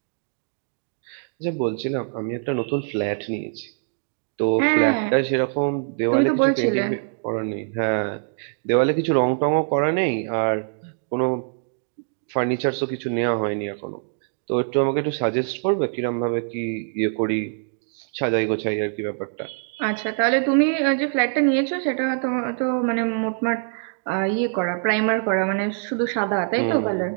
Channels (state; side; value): silent; left; digital silence